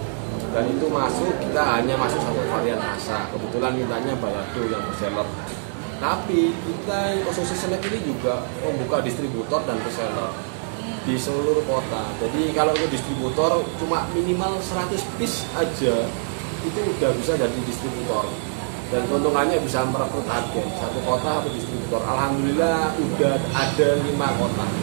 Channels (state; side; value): silent; left; digital silence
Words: Dan itu kita hanya masuk satu varian rasa. Kebetulan mintanya balado yang bestseller. Tapi kita Ususé Snack ini juga membuka distributor dan reseller di seluruh kota. Jadi kalau untuk distributor cuma minimal 100 piece aja itu udah bisa jadi distributor. Dan keuntungannya bisa merekrut agen satu kota satu distributor. Alhamdulillah udah ada 5 kota.